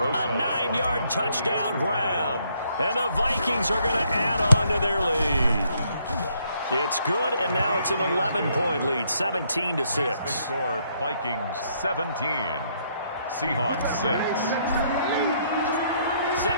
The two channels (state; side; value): inverted; both; correlation -0.70